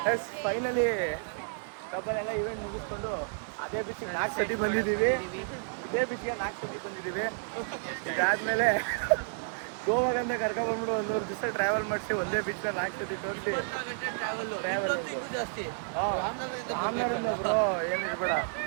Yes, finally ಡಬ್ಬಲೆಲ್ಲ ಇವೆಂಟ್ ಮುಗಿಸ್ಕೊಂಡು ಅದೇ ಬೀಚಿಗೆ 4 ಸತಿ ಬಂದಿದ್ದೀವಿ. ಇದೇ ಬೀಚ್ಗೆ 4 ಸತಿ ಬಂದಿದ್ದೀವಿ. ಇದಾದ್ಮೇಲೆ ಗೋವಾಗಂತ ಕರ್ಕೊಂಡ್ಬಂದ್ಬಿಟ್ಟು 1 ಮೂರು ದಿವಸ ಟ್ರಾವೆಲ್ ಮಾಡಿಸಿ ಒಂದೇ ಬೀಚ್ನ 4 ಸತಿ ತೋರಿಸಿ ಟ್ರಾವೆಲ್. ಆಮ್ನಾರಿಂದ ಬ್ರೋ ಏನು ಇರಬೇಡ.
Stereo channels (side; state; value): left; silent; digital silence